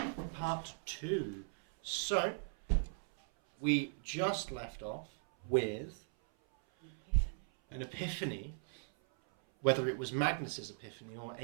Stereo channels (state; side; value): silent; left; 52 dB below the other